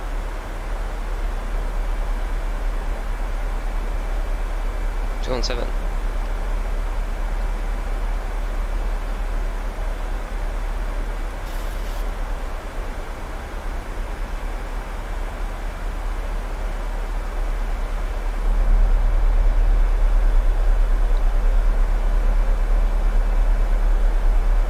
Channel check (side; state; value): both; identical; correlation 1.00